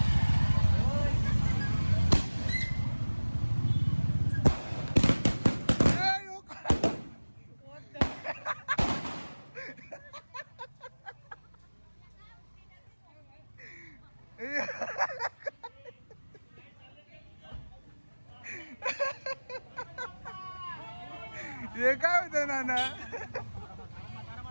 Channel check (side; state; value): both; inverted; correlation -1.00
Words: हे काय होतं नाना?